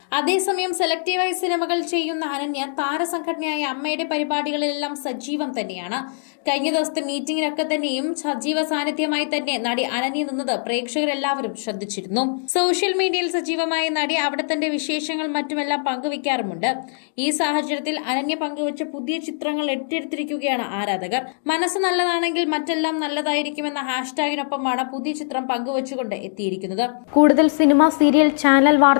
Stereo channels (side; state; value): right; silent; digital silence